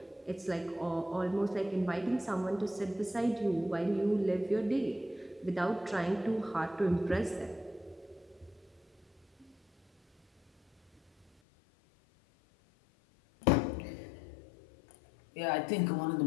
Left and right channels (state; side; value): drops out; right; at 11.2 s